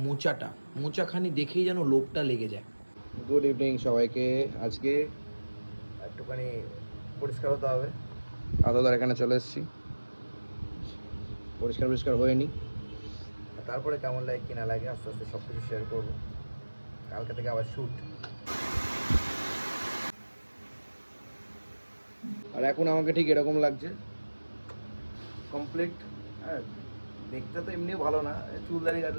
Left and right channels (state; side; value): inverted; both; correlation -1.00